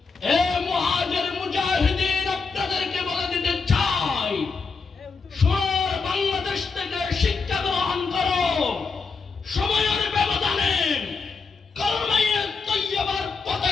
এ মুহাজির মুজাহিদিন আপনাদেরকে বলে দিতে চাই সোনার বাংলাদেশ থেকে শিক্ষা গ্রহণ করো সময়ের ব্যবধানে কলমায়ে তৈয়বার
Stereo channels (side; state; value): right; quieter; 4.8 dB